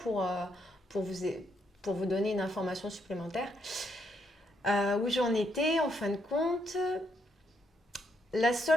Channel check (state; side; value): normal; both; correlation 0.76